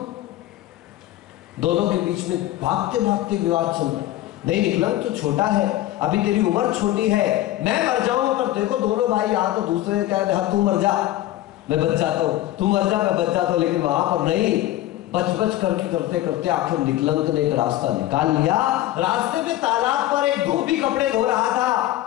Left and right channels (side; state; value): right; quieter; 14.8 dB